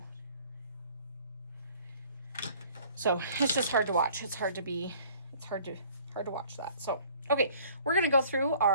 So it's just hard to watch. It's hard to watch that. So, okay, we're going to go through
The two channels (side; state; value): both; inverted; correlation -0.54